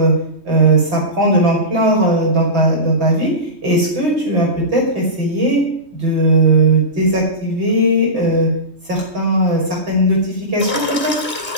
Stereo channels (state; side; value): late; left; 3.2 ms